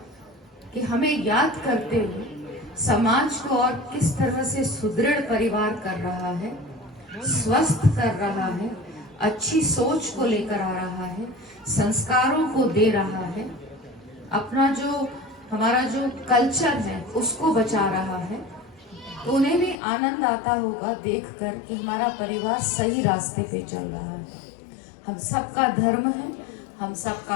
कि हमें याद करते हुए समाज को और किस तरह से सुदृढ़ परिवार कर रहा है, स्वस्थ कर रहा है, अच्छी सोच को लेकर आ रहा है, संस्कारों को दे रहा है, अपना जो हमारा जो कल्चर है उसको बचा रहा है। तो उन्हें भी आनंद आता होगा देखकर कि हमारा परिवार सही रास्ते पे चल रहा है। हम सबका धर्म है, हम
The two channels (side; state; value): right; drops out; at 19.8 s